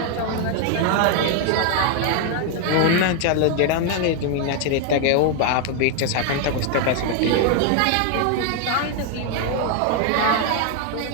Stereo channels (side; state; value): both; different; correlation 0.00